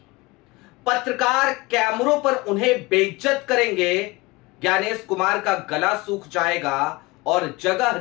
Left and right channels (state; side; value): quieter; right; 22.6 dB